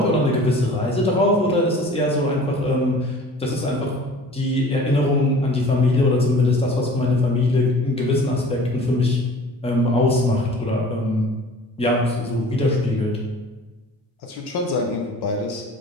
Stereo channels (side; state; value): both; normal; correlation 0.45